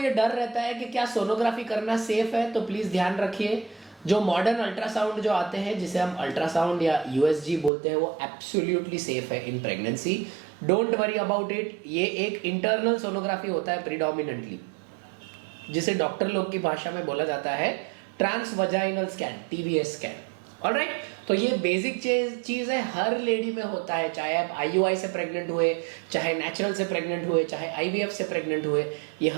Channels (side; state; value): left; drops out; at 7.7 s